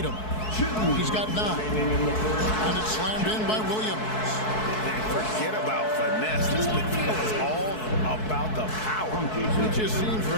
He's got 9. And it's slammed in by Williams. And forget about finesse. This is all about the power. It just seems,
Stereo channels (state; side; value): late; right; 4.6 ms